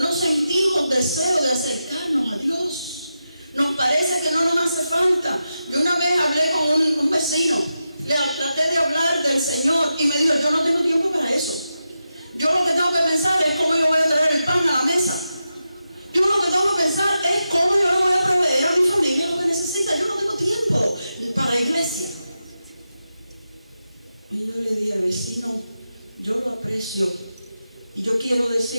no sentimos deseo de acercarnos a Dios. Nos parece que no nos hace falta. Yo una vez hablé con un vecino, le traté de hablar del Señor y me dijo, yo no tengo tiempo para eso. Yo lo que tengo que pensar es cómo yo voy a traer el pan a la mesa. Yo lo que tengo que pensar es cómo yo le voy a proveer a mi familia lo que necesita. Yo no tengo tiempo para la iglesia. Y yo le dije, vecino, yo lo aprecio y yo quiero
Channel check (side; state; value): both; inverted; correlation -0.89